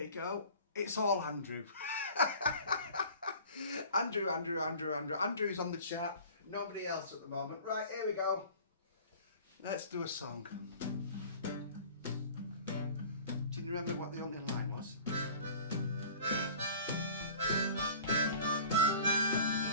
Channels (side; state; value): both; inverted; correlation -0.45